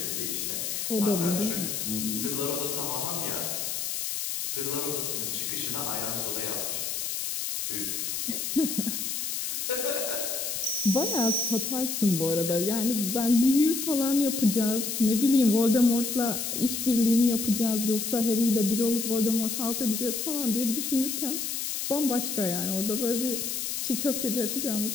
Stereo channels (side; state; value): left; noise; hiss, 2 dB below the sound